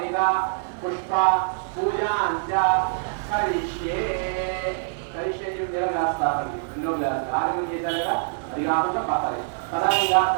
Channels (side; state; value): left; silent; digital silence